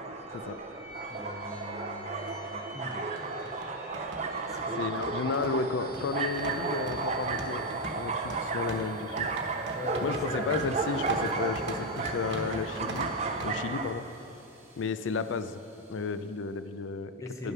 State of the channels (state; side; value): normal; both; correlation 0.03